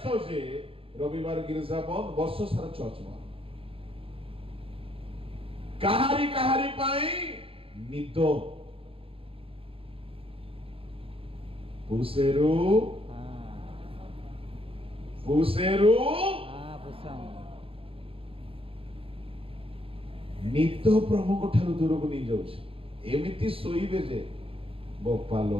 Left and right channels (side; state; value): left; late; 0.27 ms